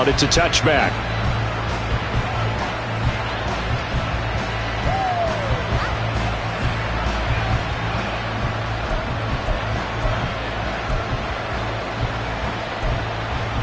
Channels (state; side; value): identical; both; correlation 1.00